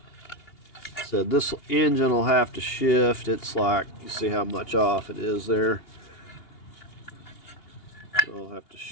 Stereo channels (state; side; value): late; right; 2.8 ms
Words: So this engine will have to shift. It's like, you see how much off it is there. So I'll have to